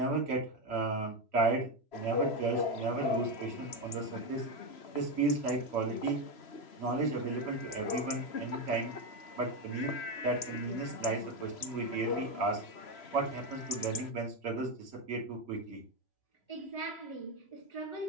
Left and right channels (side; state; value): right; late; 3.0 ms